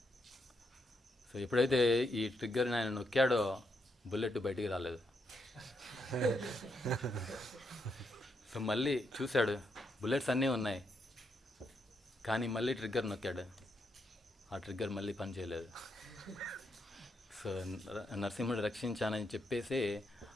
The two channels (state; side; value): normal; both; correlation 0.80